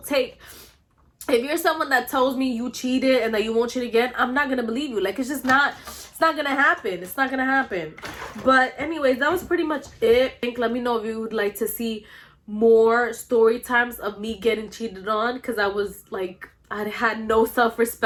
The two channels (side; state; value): both; identical; correlation 1.00